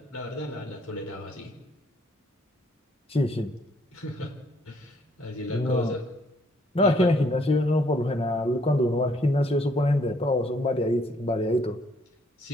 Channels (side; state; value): both; normal; correlation 0.66